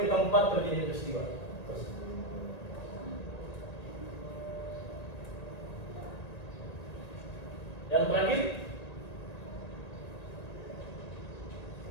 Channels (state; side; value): late; right; 1.9 ms